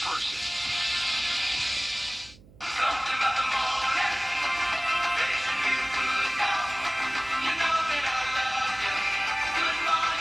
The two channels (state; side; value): noise; right; hum, 24 dB below the sound